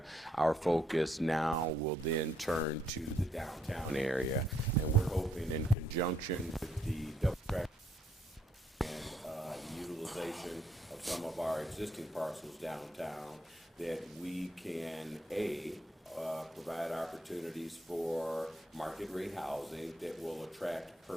our focus now will then turn to the downtown area. And we're hoping, in conjunction with the double track and utilization of some of our existing parcels downtown, that we can, provide opportunities for market rate housing that will attract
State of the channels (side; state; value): both; normal; correlation 0.72